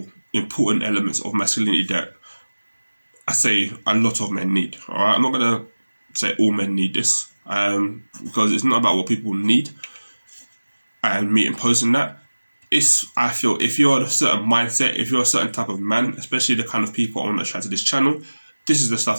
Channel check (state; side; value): inverted; both; correlation -1.00